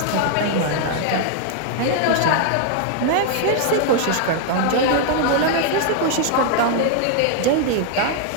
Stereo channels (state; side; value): different; both; correlation 0.00